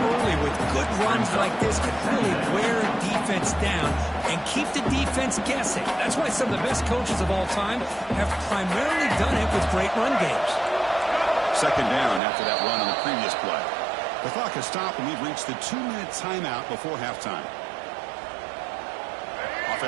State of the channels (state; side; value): drops out; left; at 12.2 s